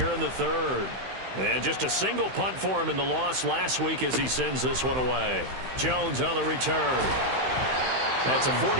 in the 3rd. And just a single punt for him in the loss last week as he sends this one away. Jones on the return. That's a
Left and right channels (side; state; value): left; late; 16 ms